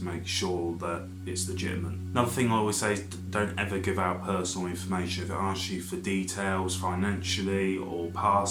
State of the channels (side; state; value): both; identical; correlation 1.00